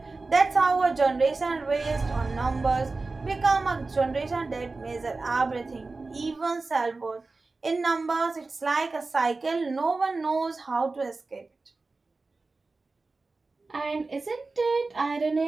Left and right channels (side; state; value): left; quieter; 3.6 dB